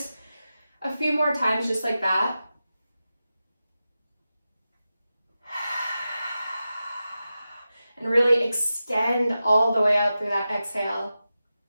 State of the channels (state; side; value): inverted; both; correlation -0.92